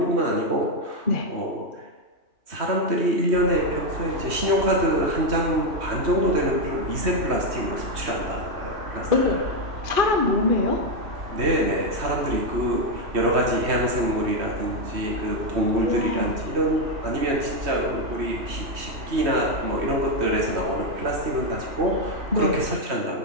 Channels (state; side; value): late; left; 3.1 ms